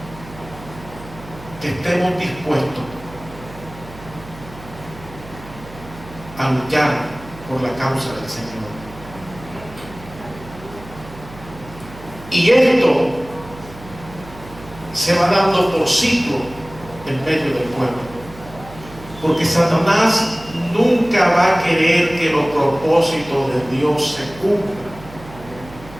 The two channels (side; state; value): right; noise; hum, 17 dB below the sound